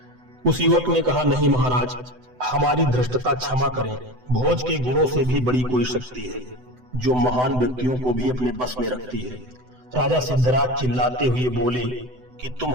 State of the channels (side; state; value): left; late; 7.9 ms